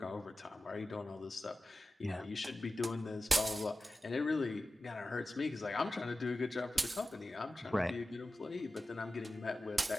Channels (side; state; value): both; normal; correlation 0.94